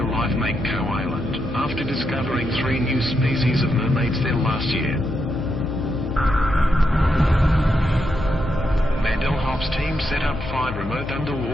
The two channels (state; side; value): normal; both; correlation 0.82